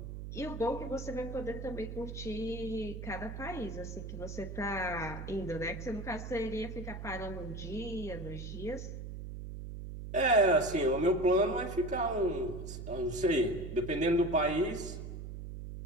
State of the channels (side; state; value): right; noise; hum, 8 dB below the sound